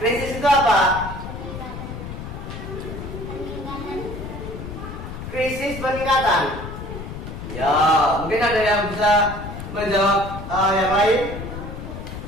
Krisis itu apa? Krisis peningkatan. Ya, mungkin ada yang bisa menjawab yang lain.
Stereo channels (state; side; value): noise; left; rumble, 9 dB below the sound